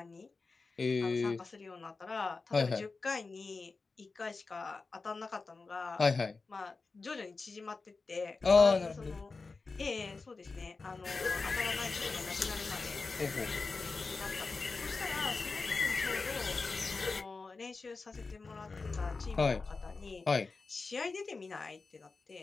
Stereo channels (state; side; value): quieter; right; 4.1 dB